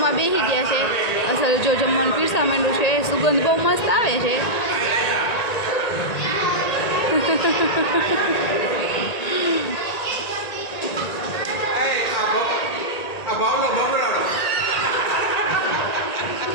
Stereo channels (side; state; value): right; late; 1.9 ms